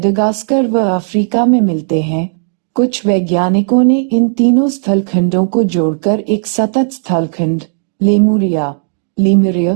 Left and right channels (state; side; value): silent; left; digital silence